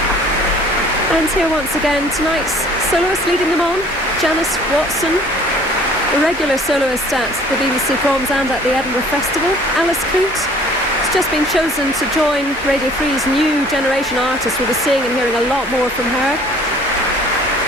And here once again, tonight's soloist leading them on, Janice Watson, a regular soloist at the BBC Proms and at the Edinburgh Festival. Alice Coote has just been chosen to join Radio 3's new generation artists. We'll be seeing and hearing a lot more from her.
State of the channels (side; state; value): both; normal; correlation 0.53